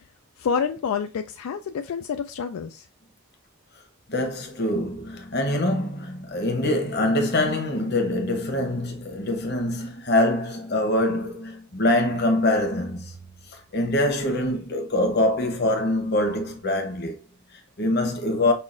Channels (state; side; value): normal; both; correlation 0.20